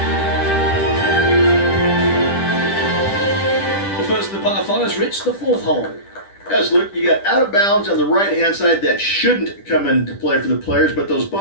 The first of the par fives reached the fourth hole. Yes, look, you got out of bounds on the right-hand side that shouldn't come into play for the players, but those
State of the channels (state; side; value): late; right; 10 ms